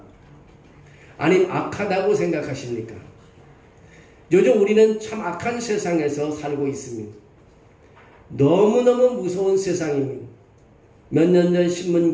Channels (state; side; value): identical; both; correlation 1.00